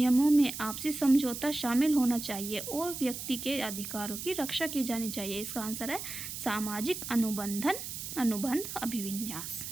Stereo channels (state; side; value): noise; right; hiss, 7 dB below the sound